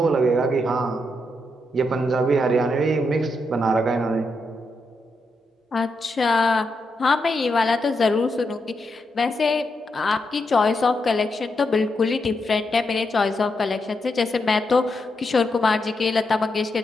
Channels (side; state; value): both; normal; correlation 0.83